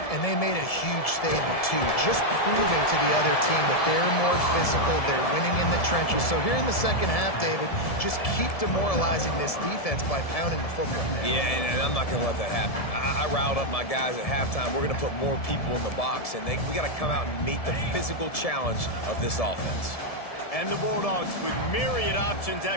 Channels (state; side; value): late; right; 1.7 ms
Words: And they made a huge statement, too, just proving to the other team that they're more physical, they're winning in the trenches. So here in the second half, David, just keep demoralizing this defense by pounding the football. Yeah, and I'm not going to let that happen. I riled up my guys at halftime. We're going to put more people in the box, and we got to come out and meet the physical challenge of this offense. And the Bulldogs with myriad options